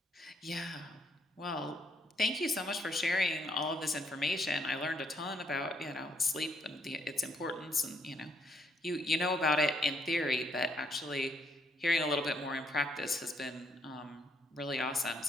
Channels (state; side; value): normal; both; correlation 0.72